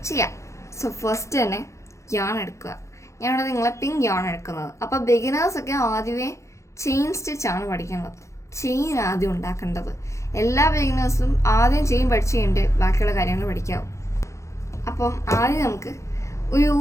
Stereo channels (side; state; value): right; late; 0.14 ms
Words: ചെയ്യാം. സോ ഫസ്റ്റ് തന്നെ യാൺ എടുക്കുക. ഞാനിവിടെ നിങ്ങളെ പിങ്ക് യാൺ എടുക്കുന്നത്. അപ്പോൾ ബിഗിനേഴ്സൊക്കെ ആദ്യമേ ചെയിൻ സ്റ്റിച്ചാണ് പഠിക്കുന്നത്. ചെയിൻ ആദ്യം ഉണ്ടാക്കേണ്ടത്. എല്ലാ ബിഗിനേഴ്സും ആദ്യം ചെയിൻ പഠിച്ചു കഴിഞ്ഞിട്ട് ബാക്കിയുള്ള കാര്യങ്ങൾ പഠിക്കാവും. അപ്പം ആദ്യം നമുക്ക് ഒരു